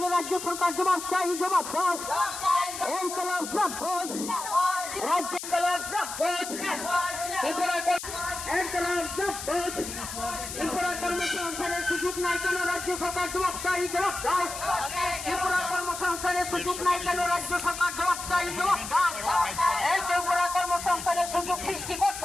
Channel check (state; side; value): noise; left; hiss, 8 dB below the sound